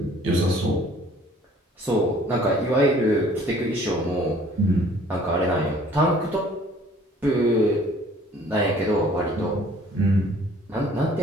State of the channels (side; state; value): both; normal; correlation 0.55